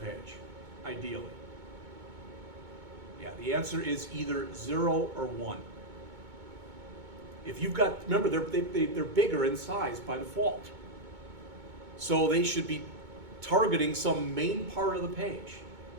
page? Ideally. Yeah, the answer is either 0 or 1. If you've got, remember, they're bigger in size by default. So they should be targeting some main part of the page.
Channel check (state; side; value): late; left; 2.2 ms